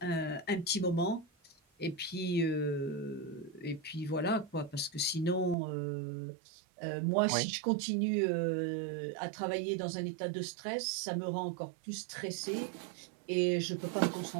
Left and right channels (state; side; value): drops out; left; at 5.6 s